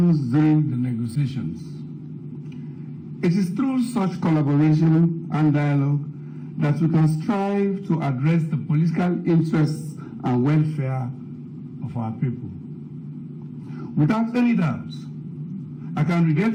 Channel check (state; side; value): identical; both; correlation 1.00